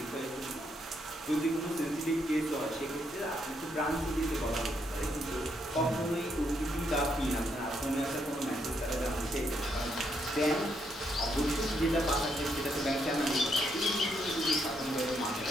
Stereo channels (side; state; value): both; normal; correlation 0.76